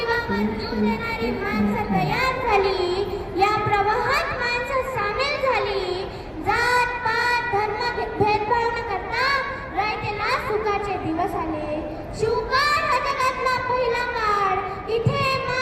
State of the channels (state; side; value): identical; both; correlation 1.00